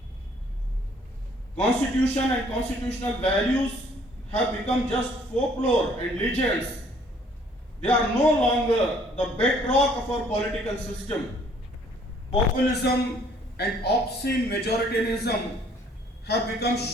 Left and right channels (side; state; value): both; normal; correlation 0.60